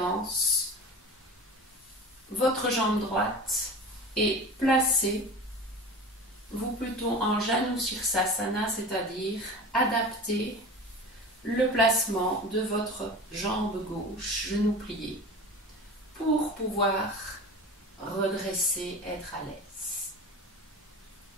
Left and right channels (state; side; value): normal; both; correlation 0.34